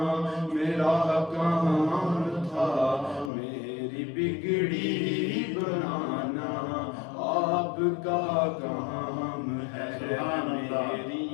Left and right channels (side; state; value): right; drops out; at 3.3 s